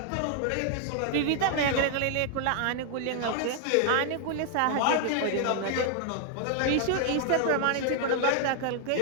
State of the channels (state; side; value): different; both; correlation 0.00